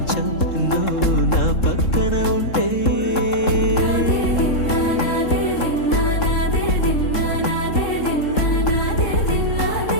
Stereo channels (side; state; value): right; late; 3.7 ms